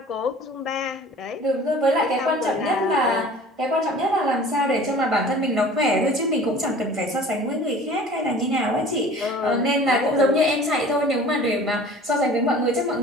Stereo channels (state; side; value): normal; both; correlation 0.45